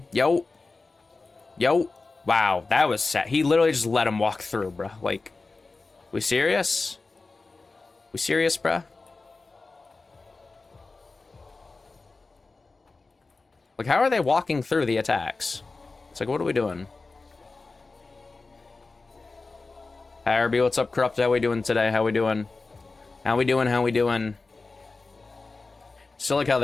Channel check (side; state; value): right; quieter; 3.8 dB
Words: Yo. Yo. Wow, that was sad. He literally just let him walk through, bro. Like, we serious? We serious, bruh? Like, how are they walking through the attacks? It's like, what are we doing? Hi, Herbie, what's up, Corrupt? How we doing today? How we doing? How we doing? How we doing? Still like how